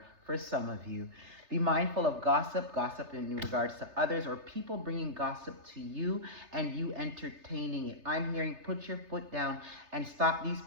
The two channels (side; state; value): left; late; 3.3 ms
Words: For some of you, be mindful of gossip in regards to others, or people bringing gossip to you and you entertaining it. I'm hearing put your foot down and stop these